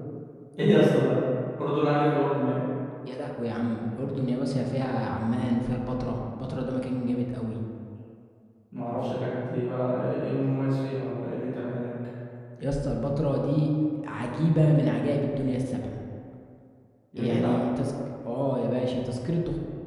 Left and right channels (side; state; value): both; identical; correlation 1.00